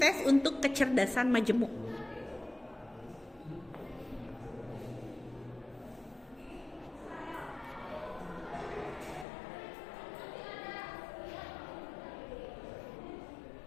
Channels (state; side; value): drops out; right; at 9.2 s